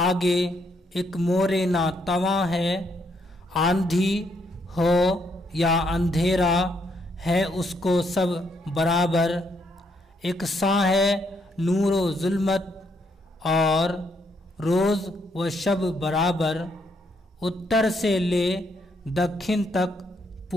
एक मोरे ना तवां है। आंधी हो या अंधेरा है उसको सब बराबर। एक सा है नूरो जुल्मत और रोज व शब बराबर। उत्तर से ले दक्षिण तक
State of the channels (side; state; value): both; normal; correlation 0.74